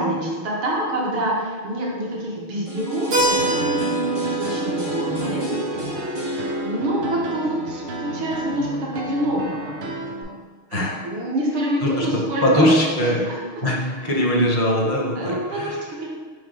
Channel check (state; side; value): late; left; 6.4 ms